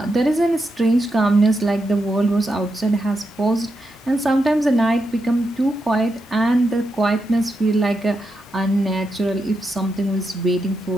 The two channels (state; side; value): normal; both; correlation 0.85